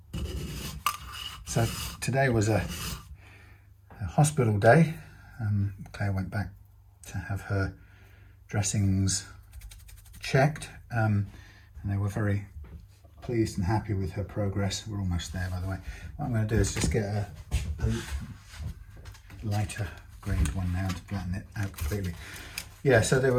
So today was a hospital day. Claire went back to have her dressings checked, and they were very pleased and happy with her progress. We're almost there, by the way. What I'm going to do is just get a lighter grade one now to flatten it out completely. Yeah, so they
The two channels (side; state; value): both; identical; correlation 1.00